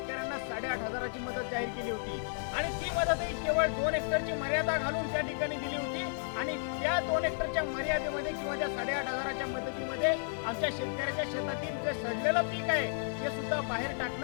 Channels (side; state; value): right; silent; 56 dB below the other